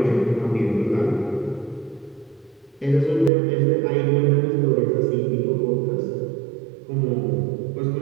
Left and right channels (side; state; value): left; drops out; at 3.3 s